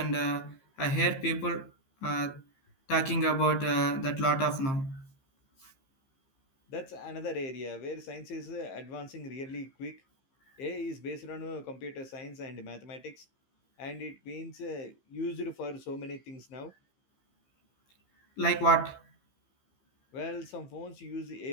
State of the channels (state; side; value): late; right; 15 ms